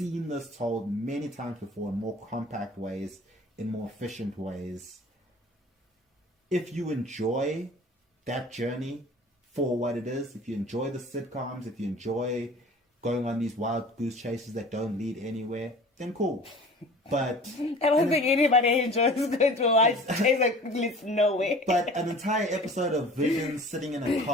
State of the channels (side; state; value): both; normal; correlation 0.44